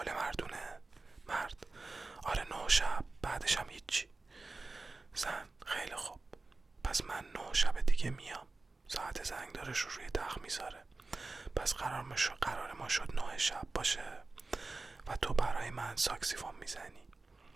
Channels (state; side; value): quieter; left; 3.5 dB